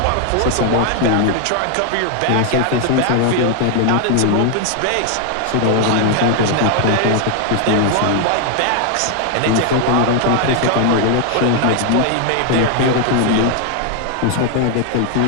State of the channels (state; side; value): different; both; correlation 0.00